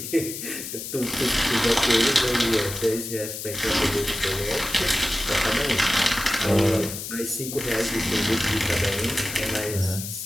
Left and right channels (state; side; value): noise; left; hiss, 8 dB below the sound